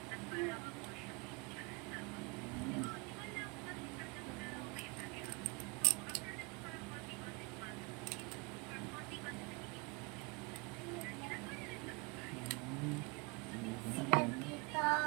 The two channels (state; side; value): quieter; left; 28.6 dB